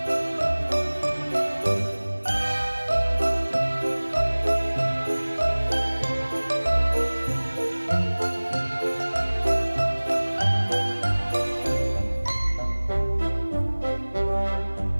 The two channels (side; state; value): both; inverted; correlation -1.00